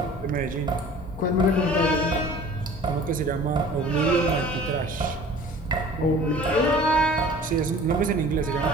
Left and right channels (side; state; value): both; normal; correlation 0.46